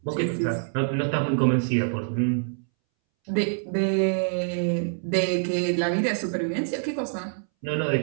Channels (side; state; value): left; silent; 61 dB below the other